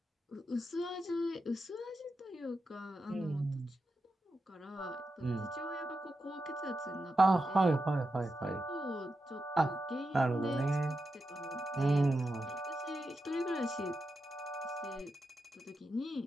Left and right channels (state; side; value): normal; both; correlation 0.88